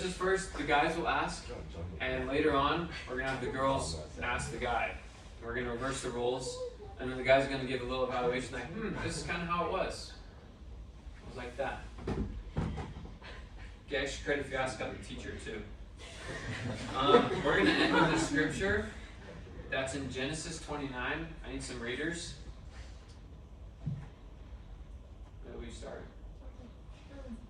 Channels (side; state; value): both; identical; correlation 1.00